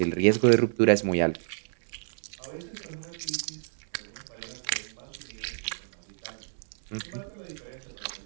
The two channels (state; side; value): silent; left; digital silence